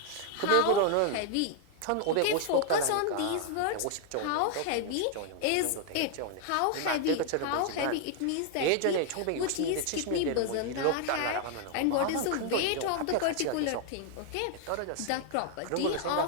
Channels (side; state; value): both; different; correlation 0.00